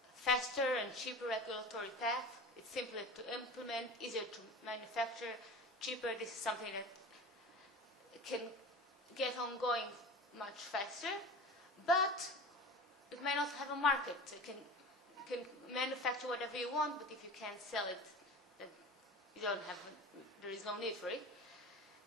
faster and cheaper regulatory path. It's simpler to implement, easier to manufacture, cheaper. This is something that can get ongoing much faster, but it may not have a market. You can manufacture whatever you want, but if you can't sell it, then there is no need for it.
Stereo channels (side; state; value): both; normal; correlation 0.34